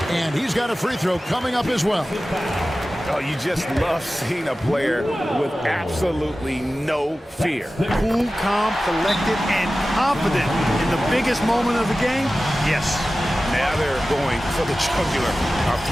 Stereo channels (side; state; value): both; normal; correlation 0.95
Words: and he's got a free throw coming up as well. Oh, you just love seeing a player with absolutely no fear. Cool, calm, collected, and confident in the biggest moment of the game. Yes. Now they're going for the jugular. A